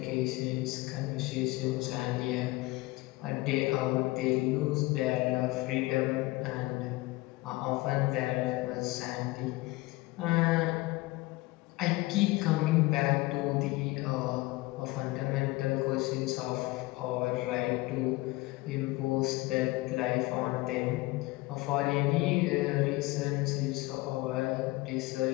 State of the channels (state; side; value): quieter; right; 20.9 dB